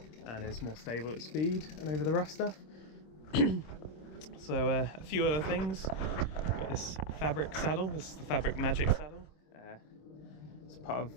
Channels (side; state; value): right; late; 26 ms